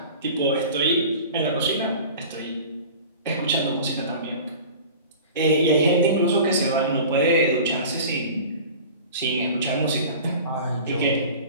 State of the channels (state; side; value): inverted; both; correlation -0.39